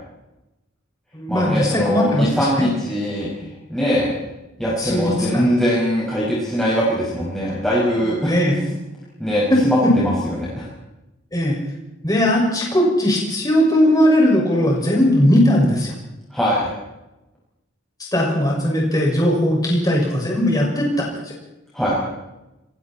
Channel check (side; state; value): both; normal; correlation 0.68